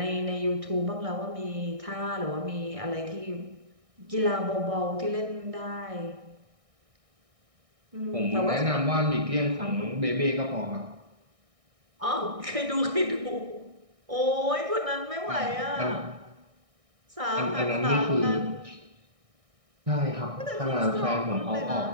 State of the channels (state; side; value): late; left; 1.6 ms